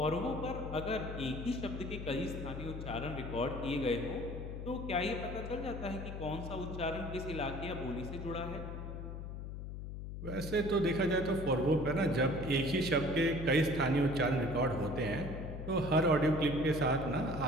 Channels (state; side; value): noise; left; hum, 7 dB below the sound